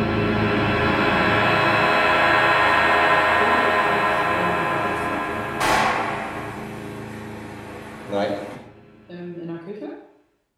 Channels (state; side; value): identical; both; correlation 1.00